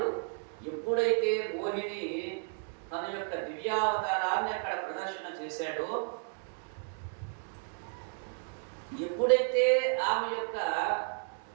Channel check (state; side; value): silent; left; 56 dB below the other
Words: ఎప్పుడైతే మోహిని తన యొక్క దివ్యావతారాన్ని అక్కడ ప్రదర్శన చేశాడో, ఎప్పుడైతే ఆమె యొక్క